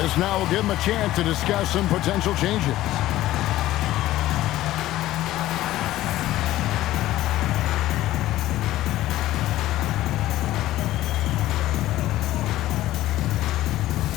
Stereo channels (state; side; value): quieter; right; 15.2 dB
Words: This now will give him a chance to discuss some potential changes.